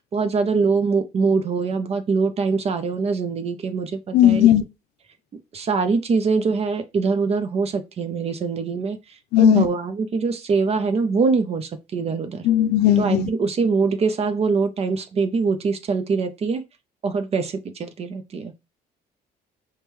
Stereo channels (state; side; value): normal; both; correlation 0.53